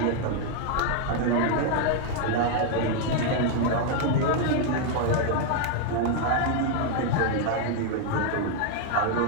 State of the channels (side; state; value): both; different; correlation 0.00